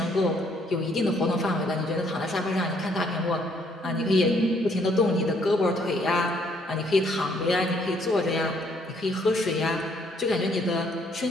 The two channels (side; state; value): both; normal; correlation 0.67